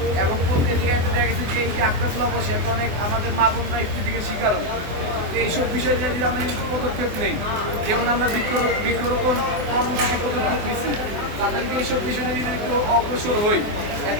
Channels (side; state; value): left; late; 24 ms